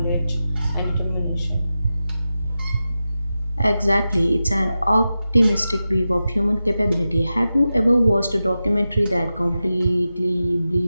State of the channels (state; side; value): inverted; both; correlation -0.92